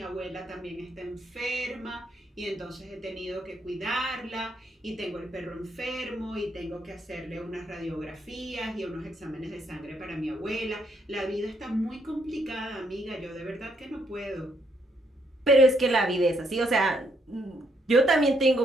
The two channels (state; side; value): normal; both; correlation 0.73